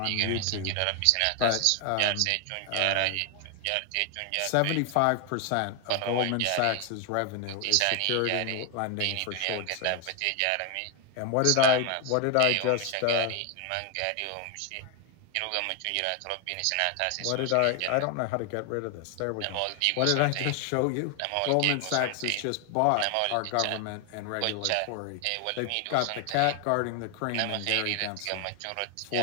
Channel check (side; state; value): both; different; correlation 0.01